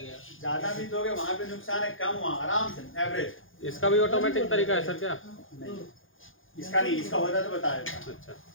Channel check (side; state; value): right; late; 0.58 ms